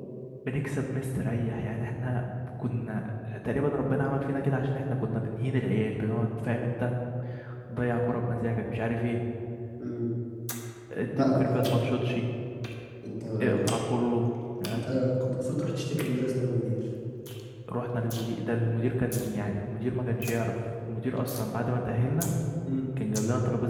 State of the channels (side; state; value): both; identical; correlation 1.00